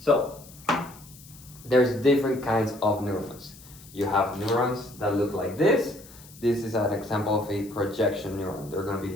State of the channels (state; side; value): noise; left; hiss, 21 dB below the sound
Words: there's different kinds of neurons. You have neurons that look like this. This is an example of a projection neuron. They're going to be